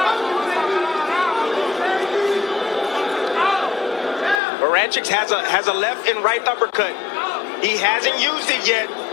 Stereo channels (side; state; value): right; drops out; at 4.4 s